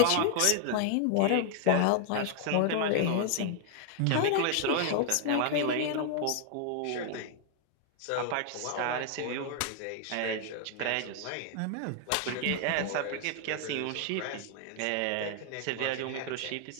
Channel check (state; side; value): different; both; correlation 0.00